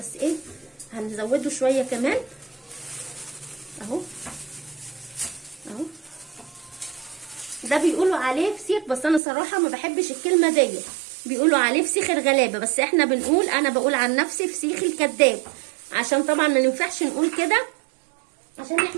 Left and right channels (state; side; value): drops out; left; at 9.2 s